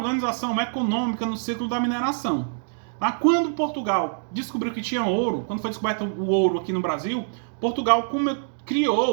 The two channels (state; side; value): silent; left; digital silence